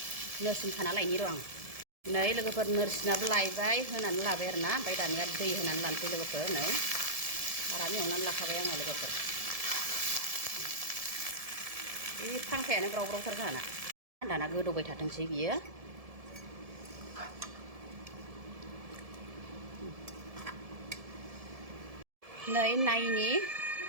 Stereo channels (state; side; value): late; left; 1.7 ms